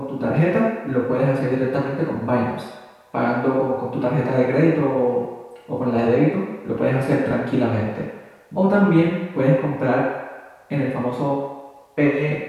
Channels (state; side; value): identical; both; correlation 1.00